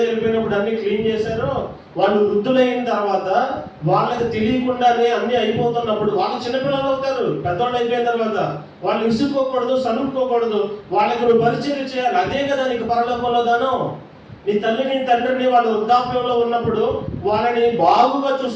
వెళ్ళిపోయినప్పుడు అన్ని క్లీన్ చేశారో, వాళ్ళు వృద్ధులైన తర్వాత వాళ్ళకి తెలియకుండానే అన్ని అయిపోతున్నప్పుడు వాళ్ళు చిన్నపిల్లలు అవుతారు. పెద్దవాళ్ళు అయిపోయిన తర్వాత వాళ్ళు విసుక్కోకూడదు, సనుక్కోకూడదు, వాళ్ళకి నువ్వు పరిచయం చేయాలి. అదే కదా నీకు పరలోకంలో దానం. నీ తల్లిని తండ్రిని వాళ్ళు వృద్ధాప్యంలో ఉన్నప్పుడు వాళ్ళని బాగుగా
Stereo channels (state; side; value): identical; both; correlation 1.00